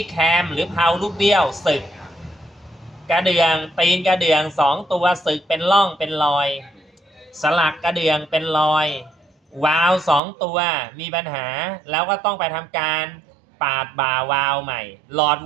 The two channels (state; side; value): drops out; left; at 10.2 s